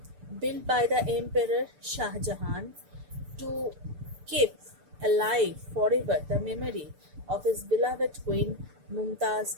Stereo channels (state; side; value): late; left; 6.8 ms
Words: built by the Emperor Shah Jahan to keep alive forever the memory of his beloved queen